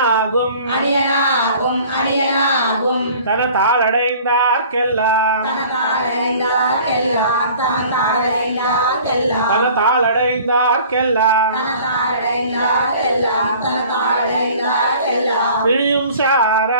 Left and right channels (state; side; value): inverted; both; correlation -0.48